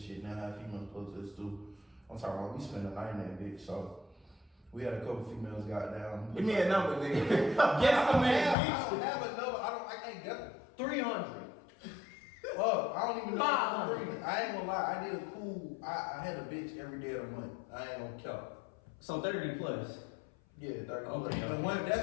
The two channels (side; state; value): right; drops out; at 8.6 s